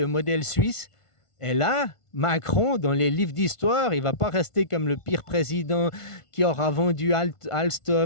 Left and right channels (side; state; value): right; late; 1.5 ms